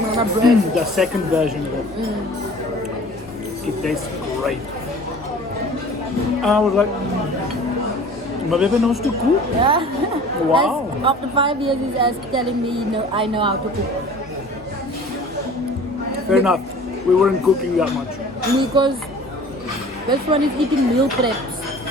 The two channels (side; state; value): both; normal; correlation 0.45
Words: bread. The second version of it. It tastes great. I was like, my baby knows to cook. Yeah. Wow. After 5 years, he's telling me, no, I know how to cook. Fair enough. We weren't cooking that much. Because this one is eating meal preps.